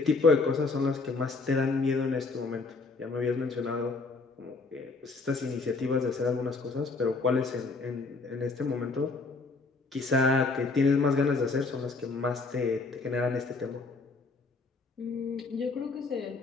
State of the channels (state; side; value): quieter; right; 3.9 dB